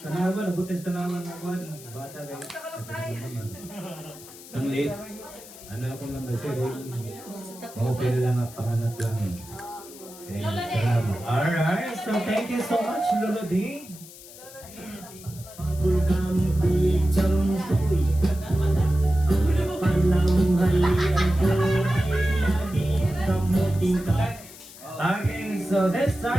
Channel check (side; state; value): left; noise; hiss, 18 dB below the sound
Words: Tanawan, abot na sa tanawan. Bata kay... Sanglit. Ano ako naman sir, okay na lang ang panganat lang. Salamat. Alright, so thank you so much, Lolo D. Okay, so this